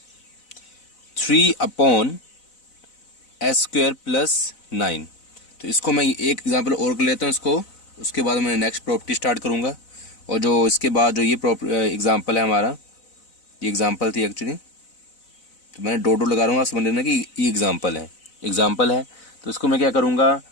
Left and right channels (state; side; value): late; right; 4.0 ms